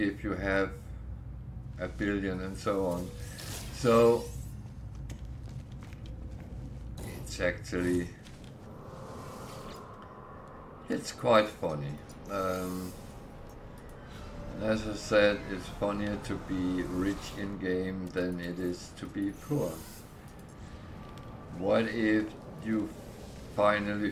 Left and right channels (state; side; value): identical; both; correlation 1.00